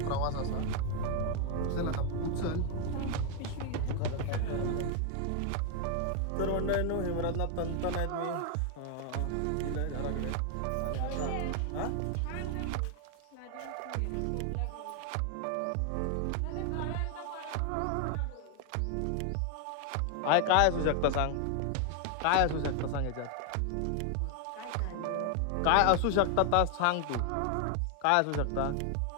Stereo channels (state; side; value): different; both; correlation 0.00